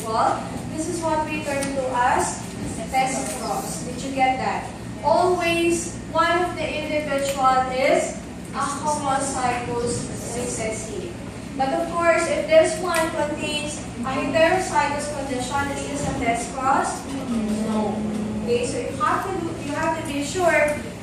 this is what we refer to as test cross. Did you get that? Always one of the individual is a homozygous recessive. But of course, if this one contains a heterozygous condition, is this a test cross? No. Okay, so you have to be sure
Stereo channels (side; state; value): both; identical; correlation 1.00